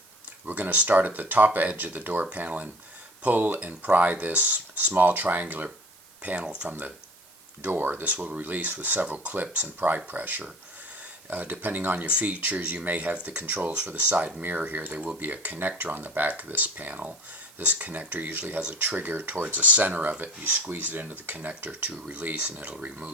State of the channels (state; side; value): noise; right; hiss, 25 dB below the sound